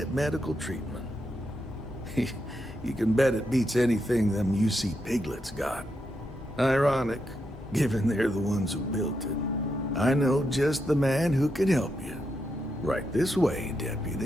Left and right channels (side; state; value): both; normal; correlation 0.83